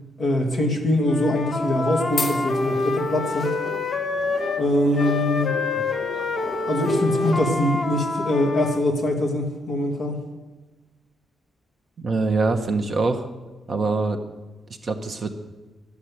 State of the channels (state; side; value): normal; both; correlation 0.73